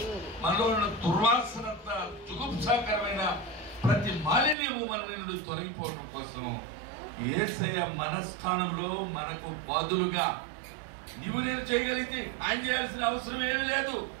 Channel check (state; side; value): drops out; left; at 4.5 s